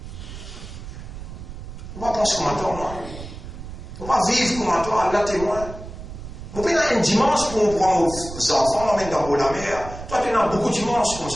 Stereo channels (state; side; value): noise; right; rumble, 11 dB below the sound